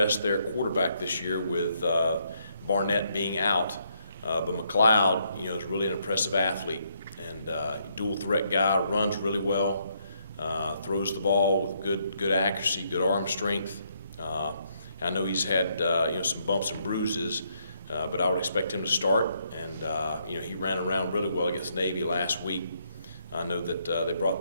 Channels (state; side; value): inverted; both; correlation -0.73